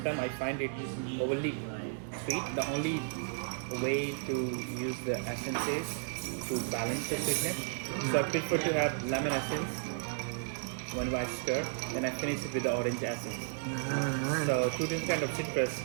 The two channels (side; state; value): left; silent; digital silence